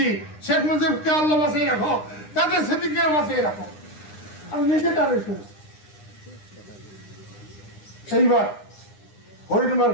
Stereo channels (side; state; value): right; late; 9.9 ms